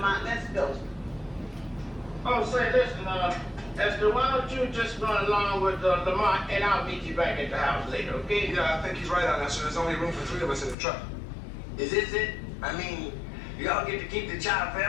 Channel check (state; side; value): drops out; right; at 10.8 s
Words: Let's go. Oh, say, listen, Esther, why don't you just run along with Lamont and I'll meet you back at the house later, okay? Yeah, I think he's right, Honesta. There's only room for 3 of us in the truck. Is this it? I mean, y'all get to keep the child